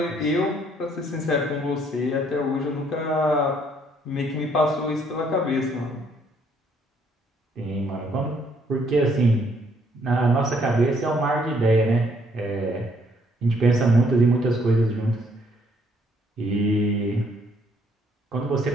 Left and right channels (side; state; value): both; normal; correlation 0.67